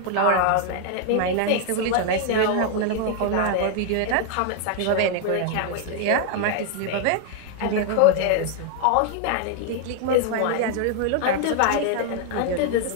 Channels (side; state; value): both; different; correlation 0.00